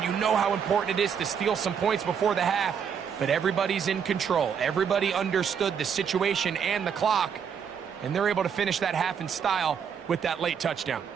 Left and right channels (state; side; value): quieter; left; 7.3 dB